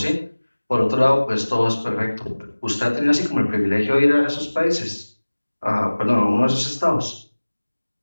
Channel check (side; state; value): both; inverted; correlation -1.00